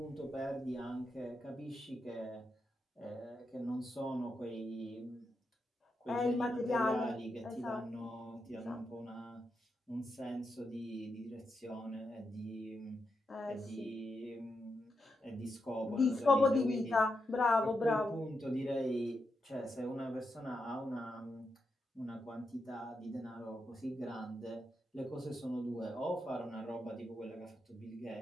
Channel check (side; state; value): both; normal; correlation 0.85